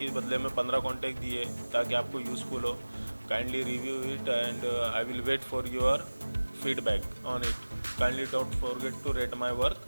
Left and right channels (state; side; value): inverted; both; correlation -1.00